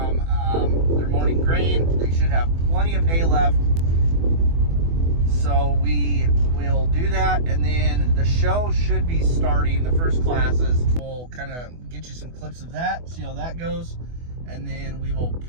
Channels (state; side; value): late; left; 24 ms